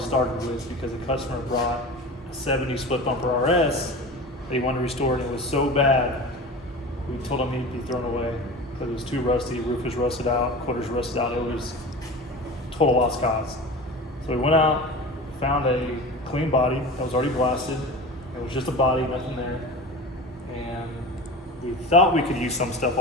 with because the customer brought a 70 split bumper RS. They wanted to restore it, and it was so bad, we told him he'd be thrown away because it was too rusty, roof was rusted out, quarters rusted out, it was total lost cause. So we went out, found a clean body that was already blasted. It was just a body, nothing there. And we thought we could use some stuff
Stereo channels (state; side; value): normal; both; correlation 0.33